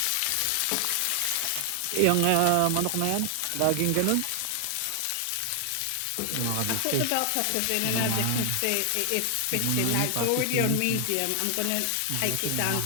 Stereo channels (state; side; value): different; both; correlation 0.00